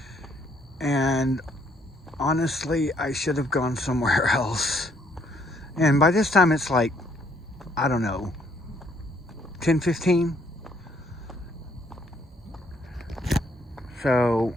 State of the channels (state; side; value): normal; both; correlation 0.68